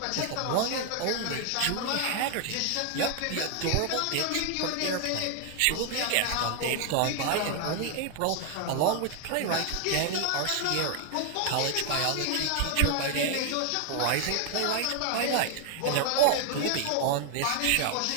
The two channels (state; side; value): different; both; correlation 0.00